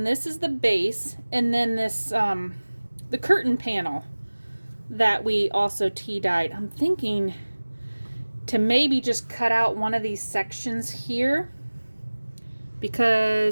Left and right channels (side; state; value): both; inverted; correlation -1.00